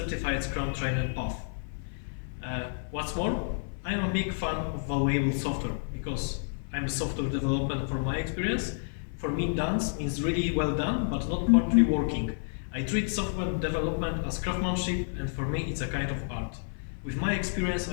Scrum trainer path. What's more, I'm a big fan of valuable software because I'm a software developer from my experience. For me, done means really well done, but not partly working. I treat software development as craftsmanship, and for me it's a kind of art. With my experience,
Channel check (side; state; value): right; silent; 58 dB below the other